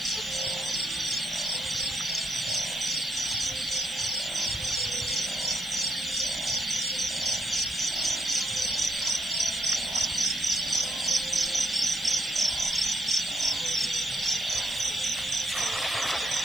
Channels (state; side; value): noise; right; hiss, 20 dB below the sound